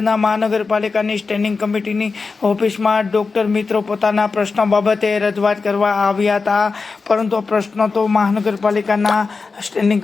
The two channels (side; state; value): right; quieter; 4.4 dB